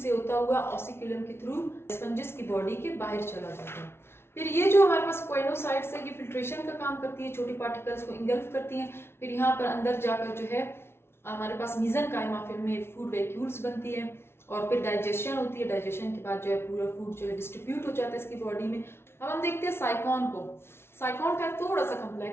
होता हुआ ऑसिक्यूलम के थ्रू स्पंजिस की बॉडी के बाहर चला जाता है। फिर ये जो हमारे पास कोएनोसाइट्स है ये फिल्ट्रेशन का काम करती है, छोटी पार्टिकल्स को इंगल्फ करती हैं। फिर यहाँ पर अंदर जाकर जो है हमारे पास मीजनकाइमा फिर में फूड वैक्यूल्स बनती है, और फिर डाइजेशन होती है। डाइजेशन के बाद जो है पूरा फूड जो है डिस्ट्रीब्यूट हो जाता है इसकी बॉडी में। अब हम देखते हैं साइकॉन को। साइकॉन का थोड़ा सा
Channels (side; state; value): right; late; 0.12 ms